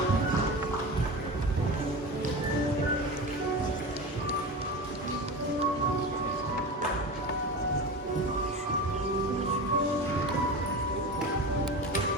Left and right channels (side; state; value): both; normal; correlation 0.28